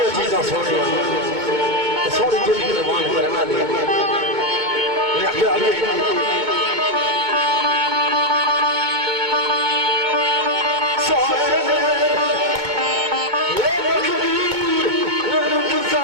चीज़ां सोनिया, तो सोनी जिंदगी कुर्बान करना दे।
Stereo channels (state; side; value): late; left; 2.2 ms